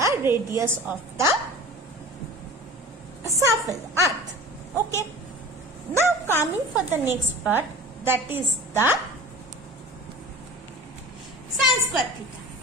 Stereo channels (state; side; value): normal; both; correlation 0.39